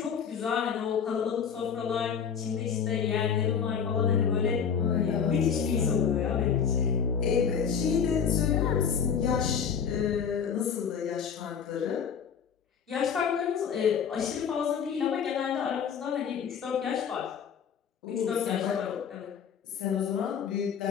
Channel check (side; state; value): right; quieter; 7.1 dB